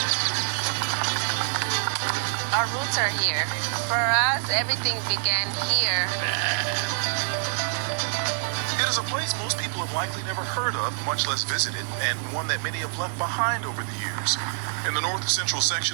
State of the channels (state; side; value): silent; left; 61 dB below the other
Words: Our roots are here. For us, everything began here. It is a place most people have likely never heard of, much less visited, and one that many have left behind over the years. In the north-central